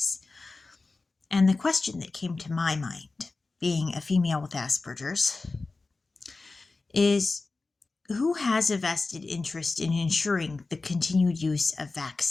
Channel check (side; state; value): right; quieter; 3.7 dB